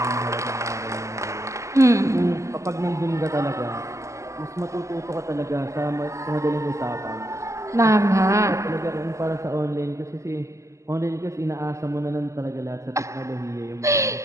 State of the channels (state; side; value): late; left; 0.15 ms